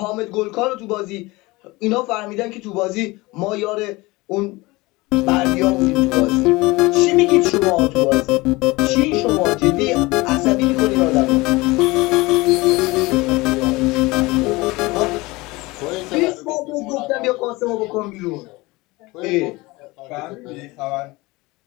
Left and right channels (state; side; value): quieter; right; 22.2 dB